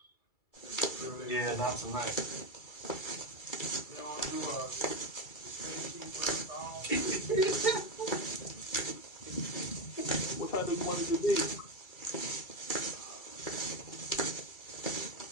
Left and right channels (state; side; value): late; right; 2.3 ms